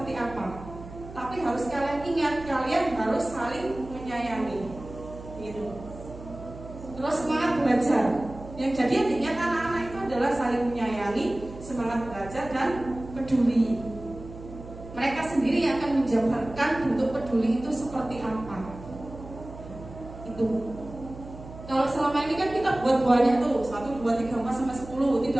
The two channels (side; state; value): right; noise; hum, 14 dB below the sound